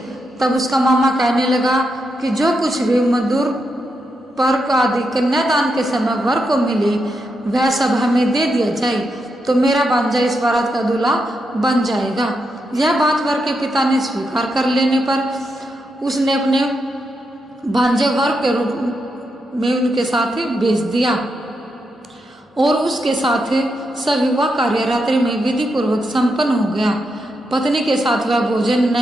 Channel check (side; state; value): both; normal; correlation 0.84